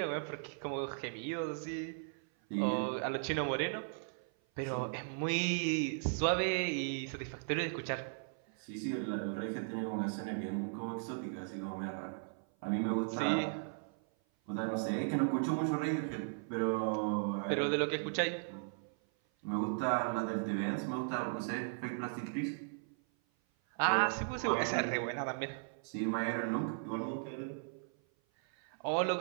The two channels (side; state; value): left; silent; 53 dB below the other